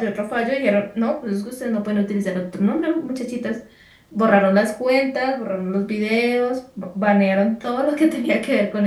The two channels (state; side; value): identical; both; correlation 1.00